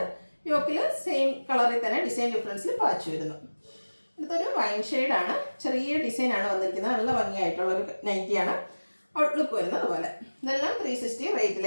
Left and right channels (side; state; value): both; inverted; correlation -1.00